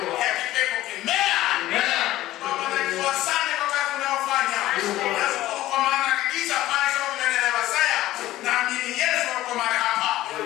Ya kipepo kimea. Baba najua sana kwa kazi unayofanya. Nashukuru kwa maana hakika maisha unaendelea Masaya. Naamini Yesu yuko mahali hapa.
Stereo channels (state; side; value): quieter; right; 15.4 dB